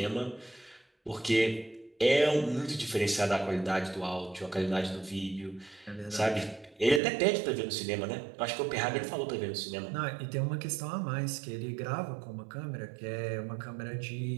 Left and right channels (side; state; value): left; drops out; at 7.0 s